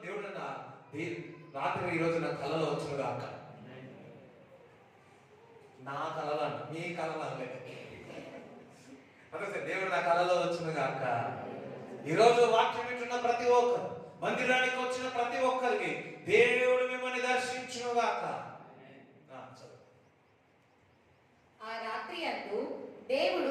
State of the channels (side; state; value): both; identical; correlation 1.00